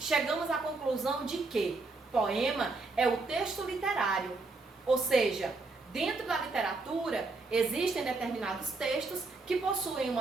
à conclusão de que poema é o texto literário, ou seja, dentro da literatura existem determinados textos que possuem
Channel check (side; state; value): left; quieter; 3.6 dB